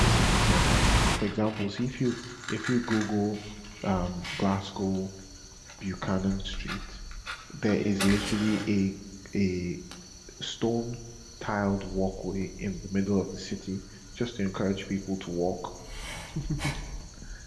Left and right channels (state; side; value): identical; both; correlation 1.00